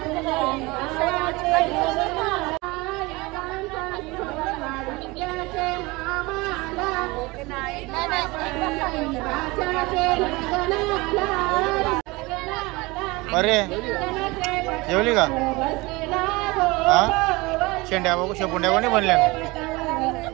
अरे जेवली का हा शेंड्या बघू शेपुंड्या कोणी बनल्या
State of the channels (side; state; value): left; quieter; 23.3 dB